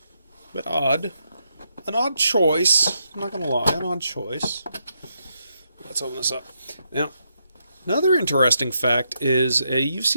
But odd. An odd choice. I'm not going to lie, an odd choice. Let's open this up. Now, another interesting fact is you've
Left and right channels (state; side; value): inverted; both; correlation -0.80